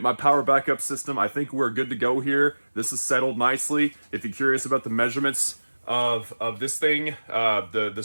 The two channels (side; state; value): both; inverted; correlation -1.00